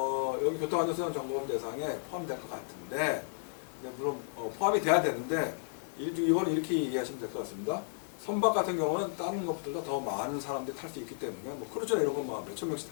여기 교통안전수단 점검 대상에 포함될 것 같은데, 물론 포함이 돼야 되는데 이거는 이렇게 이해하시면 될 것 같습니다. 선박 같은 경우는 다른 것보다 더 많은 사람들이 탈 수 있기 때문에, 뭐 크루즈나 이런 건 몇천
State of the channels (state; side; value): silent; right; digital silence